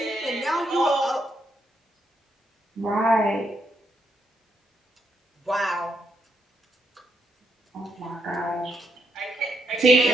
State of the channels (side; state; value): both; normal; correlation 0.78